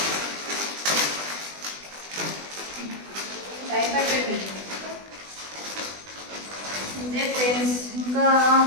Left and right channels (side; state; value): left; late; 20 ms